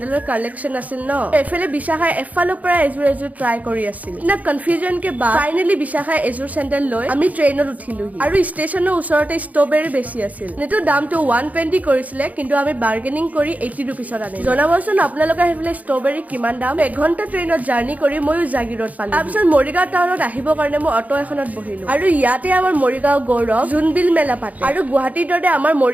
কালেকচন আছিল ন এফালে বিশাখাই এফালৰ পৰা এজোৰ ট্ৰাই কৰি আছিল না কনফিউজন কে বা ফাইনালি বিশাখাই এজোৰ চেন্ডেল লৈ আমি ট্ৰেইনত উঠিলোহি আৰু ষ্টেচনৰ ওচৰতে ষ্ট্ৰবেৰী বেছি আছিল নেটো দামটো 120 কৰিছিলে কিন্তু আমি বাৰ্গেনিং কৰি 80 रुपीसত আনিলো জনাবচোন আপোনালোকে হেফলে ষ্ট্ৰবেৰী কিমান দাম এঘণ্টা ট্ৰেইনত জাৰ্নি কৰি ময়ো জাগিৰত পালো তাৰপিছত মৰিগাঁও টাউনত আহিবৰ কাৰণে মই অটো এখনত বহিলো আৰু ইয়াতে আমাৰ মৰিগাঁও গৌৰৱ জুনবিল মেলা পাতে আৰু গুৱাহাটীৰ দৰে আমাৰ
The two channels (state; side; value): late; left; 0.074 ms